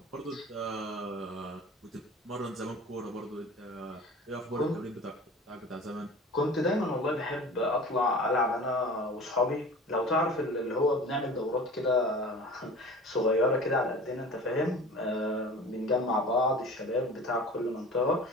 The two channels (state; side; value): normal; both; correlation 0.39